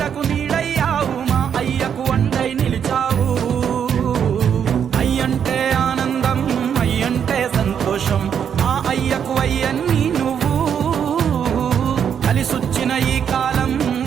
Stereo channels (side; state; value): left; quieter; 8.0 dB